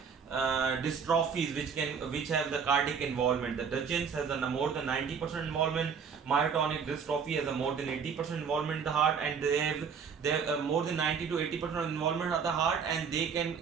dystrophies which have the cardiac involvement. The Duchenne's has a more than 90% involvement. Myotonic dystrophy has a more than 80% involvement in the heart, and they have more than 90 to 80% involvement of the heart, and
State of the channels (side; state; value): left; quieter; 6.4 dB